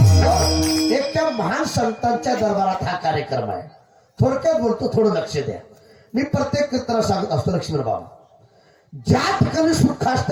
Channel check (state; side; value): identical; both; correlation 1.00